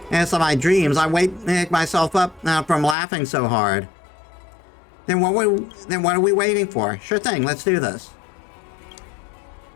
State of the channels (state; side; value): drops out; right; at 3.0 s